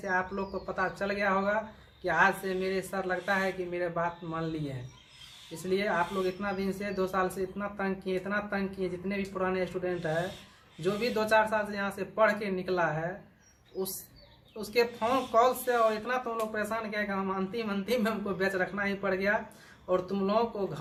आप लोग को पता चल गया होगा कि आज से मेरे सर लगता है कि मेरे बात मान लिए हैं। इसलिए आप लोग इतना दिन से 2 साल से इतना तंग किए, जितने भी पुराने स्टूडेंट हैं, जो भी 2-4 साल से यहाँ से पढ़ के निकला है, उसके फ़ोन कॉल से और इतना तुम लोग परेशान किया कि हम अंतिम में हमको बैच रखना ही पड़ गया। और तुम लोगों को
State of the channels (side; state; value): both; identical; correlation 1.00